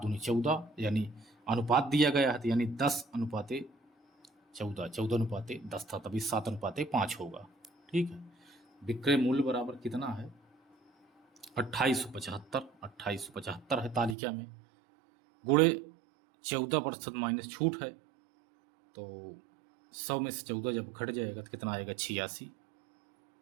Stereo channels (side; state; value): left; drops out; at 14.2 s